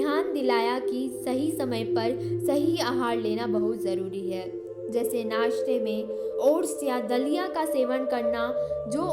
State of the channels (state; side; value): identical; both; correlation 1.00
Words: दिलाया कि सही समय पर सही आहार लेना बहुत ज़रूरी है, जैसे नाश्ते में ओट्स या दलिया का सेवन करना जो